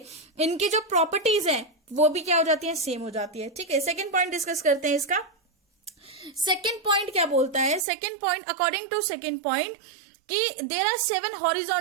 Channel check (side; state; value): left; drops out; at 7.9 s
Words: इनकी जो प्रॉपर्टीज हैं वो भी क्या हो जाती है, सेम हो जाती है। ठीक है, सेकंड पॉइंट डिस्कस करते हैं इसका। सेकंड पॉइंट क्या बोलता है, second point, according to second point, कि there are 7